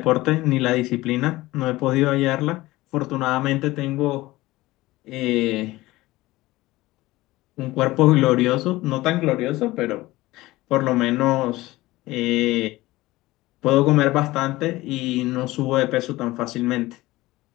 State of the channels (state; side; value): quieter; right; 18.7 dB